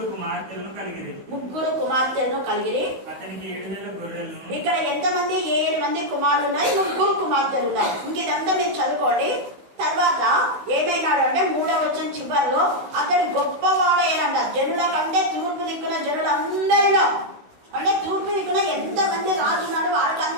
కుమార్తెలను కలిగిరి. అతనికి 7,000 గొర్రెలను. ఇక్కడ ఎంతమంది? 7 మంది కుమారులు ఉన్నాయి, 3 కుమార్తెలు ఉన్నాయి. ఇంకేదంతా మీరు చదువుకోండి. తర్వాత ఏమైనాడు అంటే 3వ వచనం చివరిలో అతడు గొప్పవాడైనంట. జనుల కంటే తూర్పు దిక్కున జనులందరిలో, అంటే తూర్పు దిక్కున ఎంతమంది రాజున్నాడు వాడికి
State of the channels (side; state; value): left; late; 16 ms